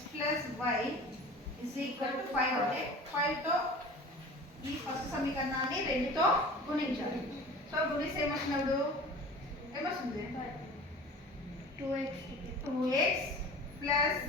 plus why is equal to 5 అంటే 5తో ఈ ఫస్ట్ సమీకరణాన్ని రెండుతో గుణించాలి. సో గుణిస్తే ఏమొచ్చినప్పుడు ఏమొస్తుంది? 2x plus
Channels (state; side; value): normal; both; correlation 0.40